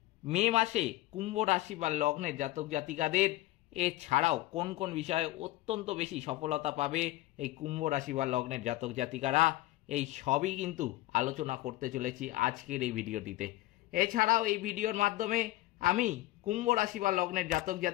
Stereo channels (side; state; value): right; quieter; 17.5 dB